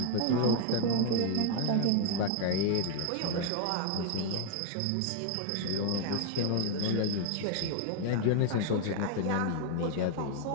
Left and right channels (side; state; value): both; different; correlation 0.00